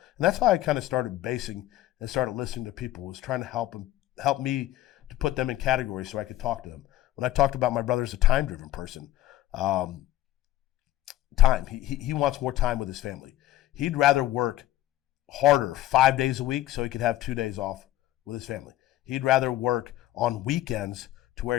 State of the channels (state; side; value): quieter; right; 14.8 dB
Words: And that's how I kind of started basing and started listening to people, was trying to help me to put them in categories so I could talk to them. When I talked about my brother as a time-driven person, time. He wants more time with his family. He'd rather work harder 5 days a week so he could have 2 days off with his family. He'd rather work on weekends to where